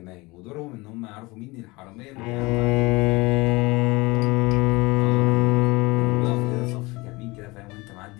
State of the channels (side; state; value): right; quieter; 23.5 dB